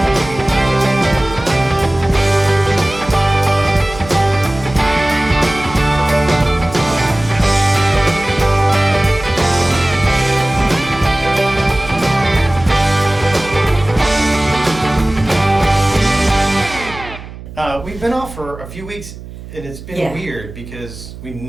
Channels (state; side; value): noise; right; hum, 14 dB below the sound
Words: We've been off for a few weeks, and it's been weird because we